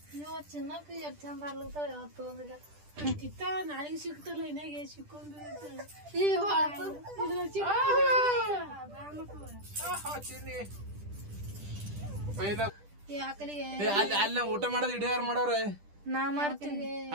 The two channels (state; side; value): late; left; 10 ms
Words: ನೀವು ಚಿನ್ನಕ್ಕೆ ಎಷ್ಟು ಚಂದ ಆಗ್ಲತ್ತಾವ ಯಾವತ್ತು ಒಂದಿಗ ಇತ್ತ ನಾಳೆಗೆ ಸಿಗ್ತಲ್ಲ ಇನ್ನಾಗೆ ಸಿಕ್ಕೊಂಡು ಅಲ್ಲ ಊಟ ಮಾಡೋದು ಇಡೀ ಯಾರು ಮಾಡವ್ರೆ ನಾ ಮಾಡ್ತೀನಿ.